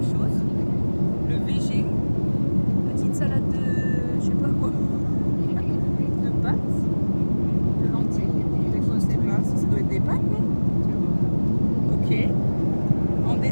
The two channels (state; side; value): inverted; both; correlation -1.00